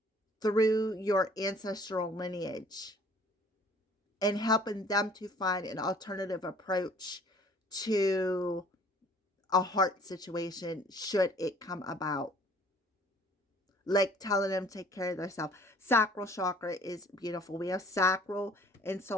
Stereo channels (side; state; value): both; normal; correlation 0.54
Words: through your ancestral lineage, and helping them to find an alternative approach to a heart situation should it come about. Like telling them to take care of themselves. Sacral chakra is beautiful. We have sacral and